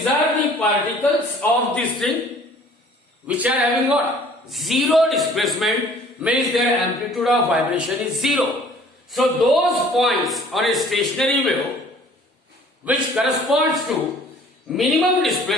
are the particles of the string which are having what? Zero displacement, means their amplitude of vibration is zero. So those points on a stationary wave which corresponds to minimum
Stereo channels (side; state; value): both; normal; correlation 0.53